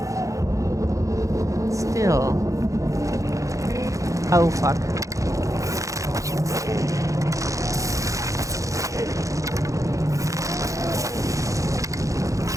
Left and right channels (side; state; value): left; late; 0.16 ms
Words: still. Oh fuck.